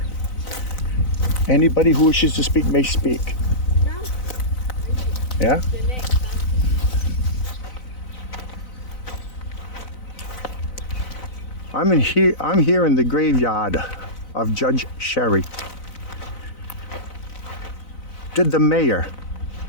Anybody who wishes to speak may speak. Yeah? The name. I'm here in the graveyard of Judge Sherry. Did the mayor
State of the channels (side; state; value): right; late; 4.0 ms